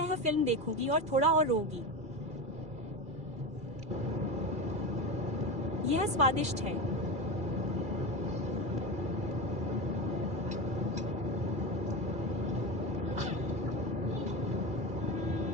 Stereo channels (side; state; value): left; late; 2.4 ms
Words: फिल्म देखूंगी और थोड़ा और रोऊंगी। यह स्वादिष्ट है।